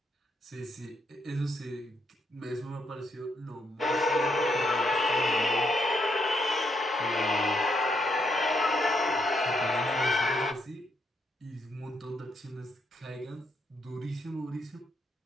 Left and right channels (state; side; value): normal; both; correlation 0.76